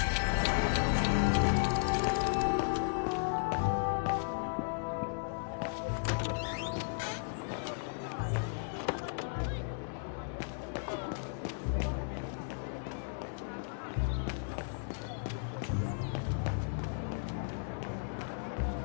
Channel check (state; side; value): silent; right; digital silence